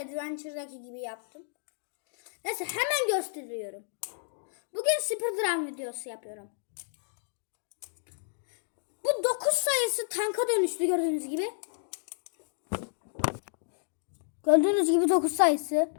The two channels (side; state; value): right; silent; digital silence